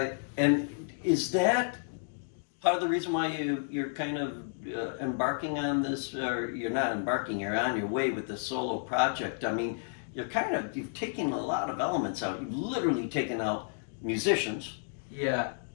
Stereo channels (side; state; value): right; silent; digital silence